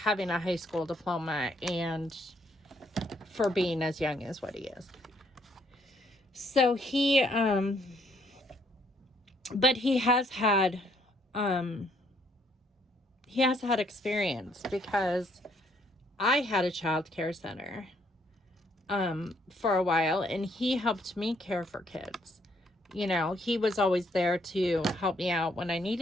a high school diploma and for being as young as what he is. So but he has had experience, because I had a child care center for a while, and he helped me care for kids. He was always there to help me out when I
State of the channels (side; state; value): both; normal; correlation 0.69